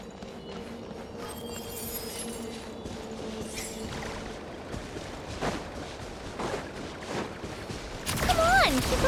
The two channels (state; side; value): identical; both; correlation 1.00